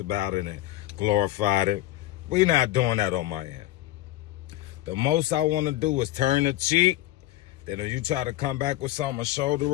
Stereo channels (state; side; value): quieter; right; 15.5 dB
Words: about it and glorified it. We not doing that on my end. The most I want to do is turn the cheek. Then if you try to come back with something, a shoulder